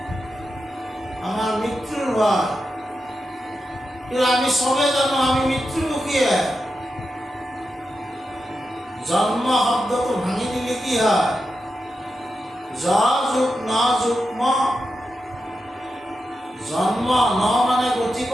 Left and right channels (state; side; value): normal; both; correlation 0.88